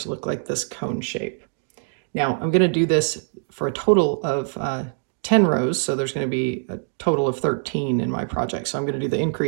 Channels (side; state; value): left; silent; digital silence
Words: to look like this cone shape. Now I'm going to do this for a total of 10 rows, so there's going to be a total of 13 in my project. So I'm going to do the